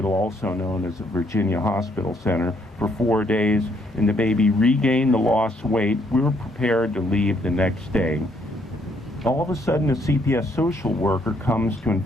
also known as the Virginia Hospital Center, for 4 days, and the baby regained the lost weight, we were prepared to leave the next day. All of a sudden, a CPS social worker comes to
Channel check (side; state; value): both; normal; correlation 0.69